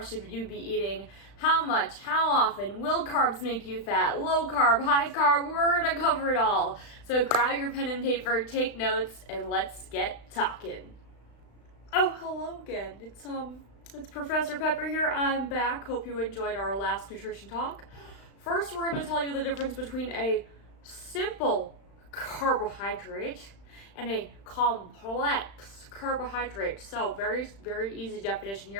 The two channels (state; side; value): late; right; 35 ms